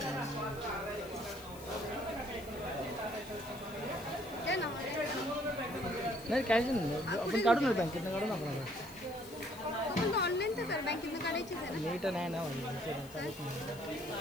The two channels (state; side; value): noise; left; hiss, 20 dB below the sound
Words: नाही कॅश नाही. आपण काढून ना बँकेतनं काढून आपण ऑनलाईन तर कर, बँकेतनं काढायचीच आहे ना. नीट नाही ना